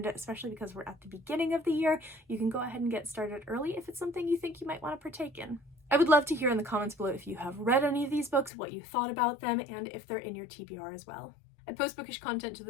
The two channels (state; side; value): drops out; right; at 8.5 s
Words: it, especially because we're at the beginning of the year. You can go ahead and get started early if it's something you think you might want to partake in. I would love to hear in the comments below if you have read any of these books, what you thought about them, and if they're in your TBR as well. I post bookish content to